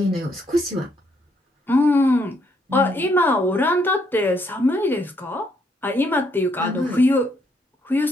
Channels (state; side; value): normal; both; correlation 0.72